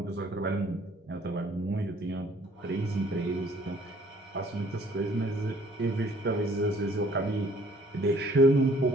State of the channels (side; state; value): both; normal; correlation 0.59